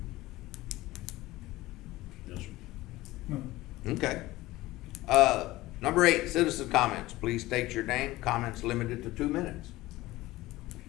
Yes, sir. No. Okay. Number 8, citizen comments. Please state your name. Comments limited to 2 minutes.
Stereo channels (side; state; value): right; quieter; 18.0 dB